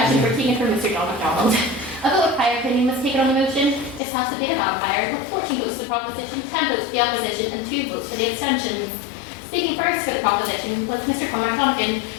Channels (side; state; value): right; drops out; at 4.0 s